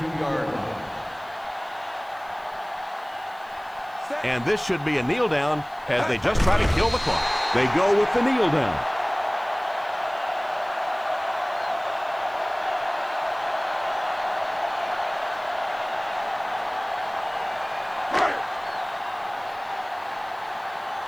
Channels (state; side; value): noise; left; hiss, 28 dB below the sound